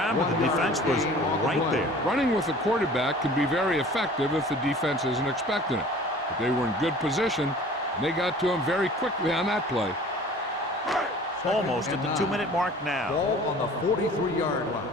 but the defense was right there. Running with the quarterback can be very effective if the defense isn't expecting it. But they were in good position, and they got to him very quickly on that play. Almost at the 2-minute mark now. Ball on the 43-yard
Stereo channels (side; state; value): both; normal; correlation 0.46